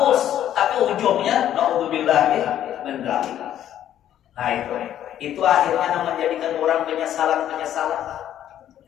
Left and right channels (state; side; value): quieter; right; 11.2 dB